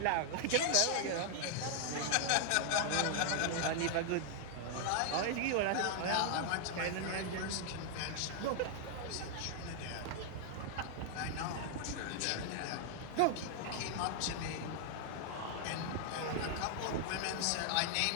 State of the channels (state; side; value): different; both; correlation 0.00